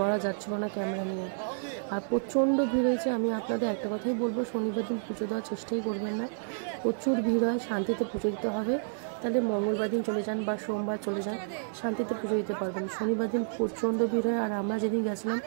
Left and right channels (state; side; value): silent; left; 58 dB below the other